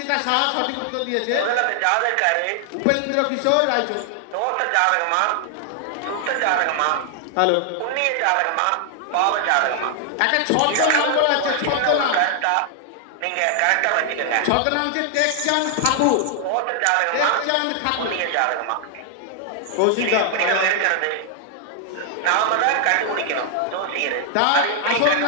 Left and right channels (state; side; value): different; both; correlation 0.00